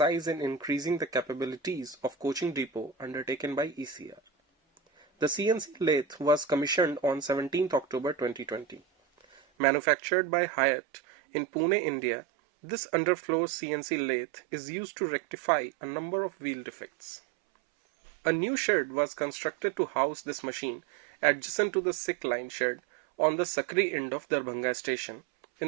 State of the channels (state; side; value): drops out; left; at 9.4 s